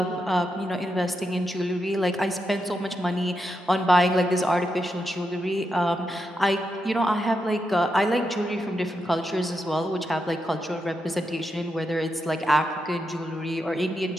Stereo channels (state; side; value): normal; both; correlation 0.84